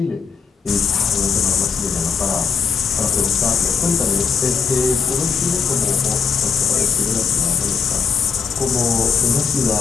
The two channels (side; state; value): right; quieter; 6.1 dB